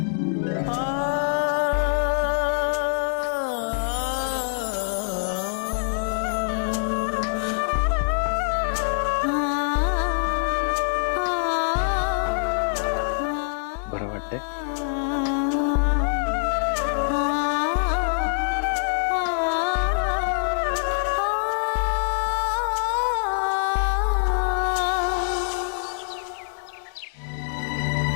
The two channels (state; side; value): silent; right; digital silence